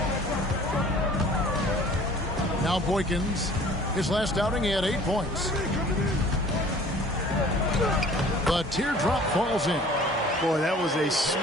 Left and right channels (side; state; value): both; normal; correlation 0.50